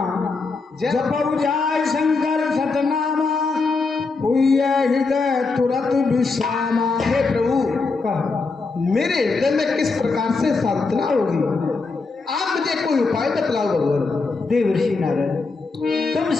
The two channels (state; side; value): quieter; right; 4.1 dB